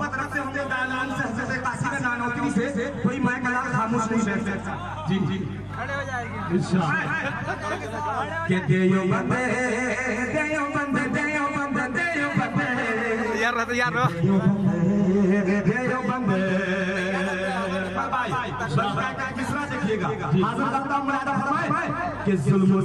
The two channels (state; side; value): identical; both; correlation 1.00